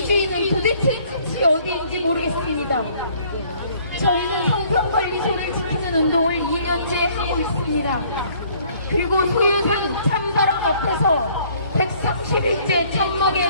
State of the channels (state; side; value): inverted; both; correlation -0.59